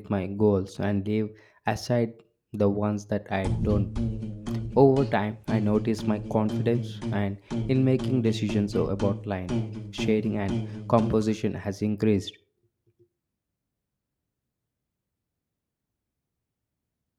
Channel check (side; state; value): both; identical; correlation 1.00